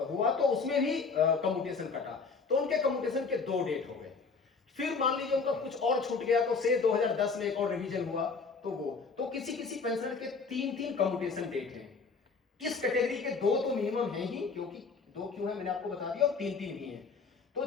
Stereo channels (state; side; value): quieter; right; 4.8 dB